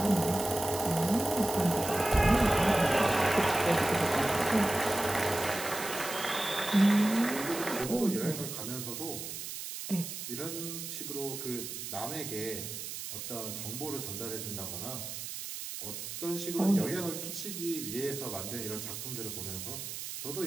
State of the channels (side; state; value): right; noise; hiss, 7 dB below the sound